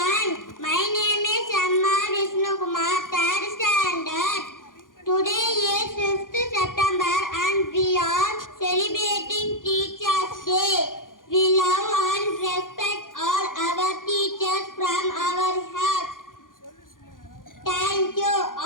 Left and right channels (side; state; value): right; late; 0.89 ms